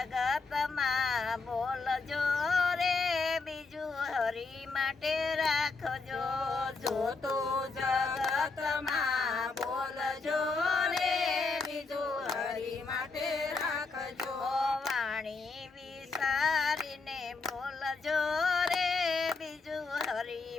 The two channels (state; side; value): quieter; right; 4.1 dB